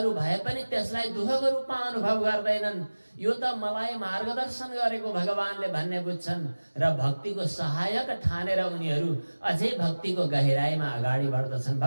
भए पनि त्यसलाई दुःखको रूपमा अनुभव गर्दैनन्। यो त मलाई मार्गदर्शन गरेको भगवानले भन्ने बुझ्छन् र भक्तिको सहायक ठानेर उनीहरू अझै भक्तिको गहिराईमा अगाडि बढ्दछन्।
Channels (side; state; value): both; inverted; correlation -1.00